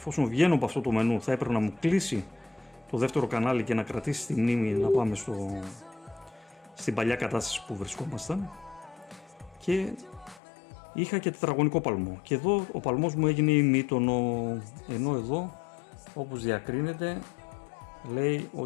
βγαίνω από αυτό το μενού θα έπρεπε να μου κλείσει το δεύτερο κανάλι και να κρατήσει τη μνήμη να πάμε στην παλιά κατάσταση που βρισκόμασταν. Και είχα και τετραγωνικό παλμό και εδώ ο παλμός μου έγινε ημίτονο, ενώ εδώ όπως διακρίνεται λέει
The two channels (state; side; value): drops out; right; at 10.4 s